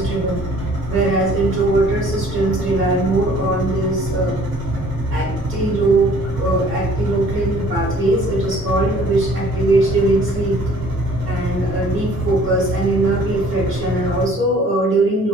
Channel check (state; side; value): normal; both; correlation 0.55